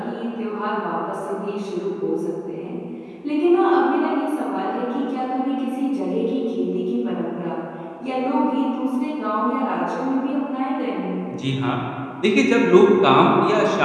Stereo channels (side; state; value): both; identical; correlation 1.00